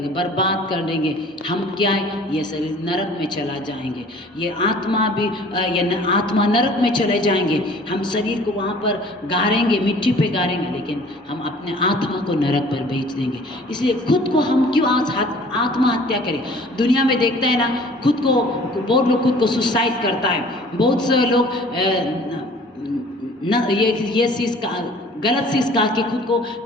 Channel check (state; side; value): normal; both; correlation 0.50